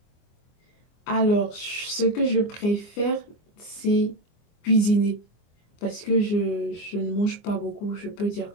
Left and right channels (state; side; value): late; right; 24 ms